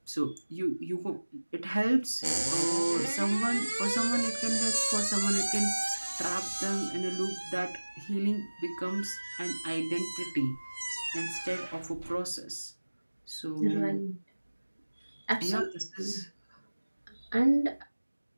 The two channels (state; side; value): inverted; both; correlation -1.00